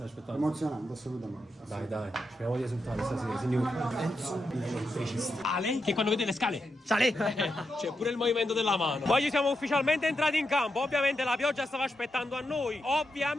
aspettando. Emozionante, assolutamente. Dai, speriamo di esultare stasera, signori. Ale, che quando vede le scale, sale! C'è pure il movimento della mano. Poi siamo ufficialmente entrati in campo. Ovviamente la pioggia stava aspettando a noi.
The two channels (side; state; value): both; normal; correlation 0.85